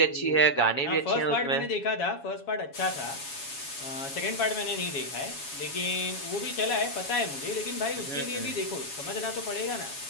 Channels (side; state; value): right; late; 7.2 ms